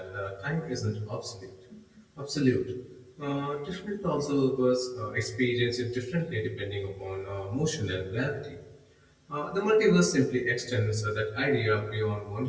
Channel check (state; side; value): identical; both; correlation 1.00